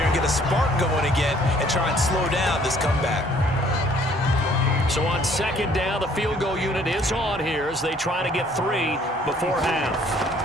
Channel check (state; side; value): normal; both; correlation 0.60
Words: and get a spark going again and try and slow down this comeback. So on second down, the field goal unit is on here as they try to get 3 before